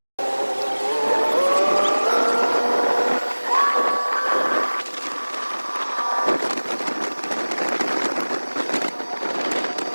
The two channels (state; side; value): inverted; both; correlation -1.00